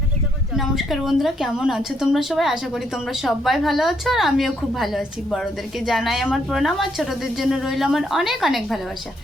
যখন জল। নমস্কার বন্ধুরা, কেমন আছো তোমরা সবাই? আশা করি তোমরা সবাই ভালো আছো আর আমিও খুব ভালো আছি। বড়োদেরকে জানাই আমার প্রণাম আর ছোটোদের জন্য রইল আমার অনেক অনেক ভালোবাসা।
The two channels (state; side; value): normal; both; correlation 0.74